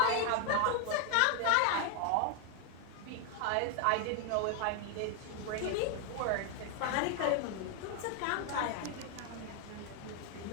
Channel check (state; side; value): different; both; correlation 0.01